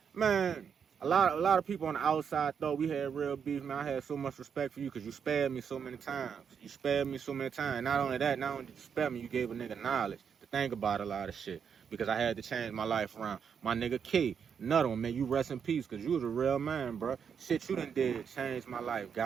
a lot of people on the outside thought we had real beef, man. I had so much respect for you because you spared me so many times. Not only did you spare me, you gave a nigga knowledge to think about a lot of shit. Because I had to change my life around. My nigga K, another one, man, you rest in peace, because you was a real man, bro. Shit you done did changed my life,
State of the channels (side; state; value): left; quieter; 7.1 dB